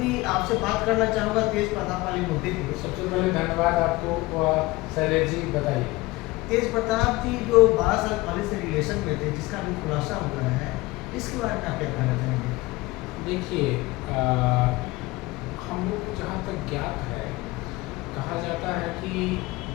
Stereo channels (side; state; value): right; quieter; 20.9 dB